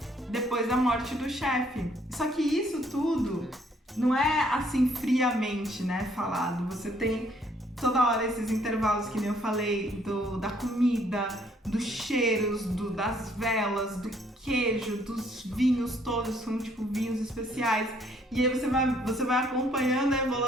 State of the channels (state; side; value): normal; both; correlation 0.65